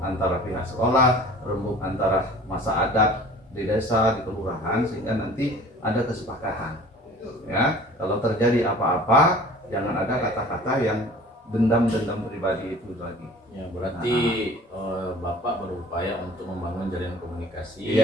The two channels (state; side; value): normal; both; correlation 0.46